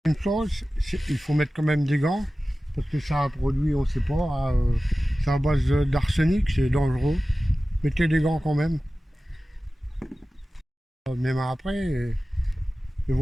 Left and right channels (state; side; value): normal; both; correlation 0.96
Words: Une chose, il faut mettre quand même des gants. Parce que ça a produit, on ne sait pas, c'est à base d'arsenic, c'est dangereux. Mettez des gants quand même. Même après, il